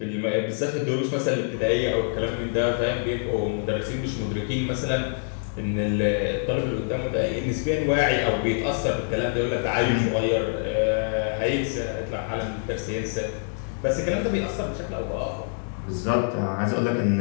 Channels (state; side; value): silent; right; 61 dB below the other